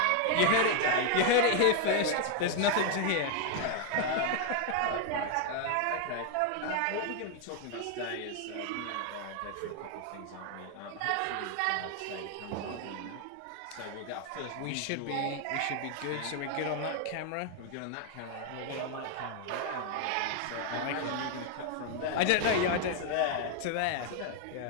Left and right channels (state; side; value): different; both; correlation 0.01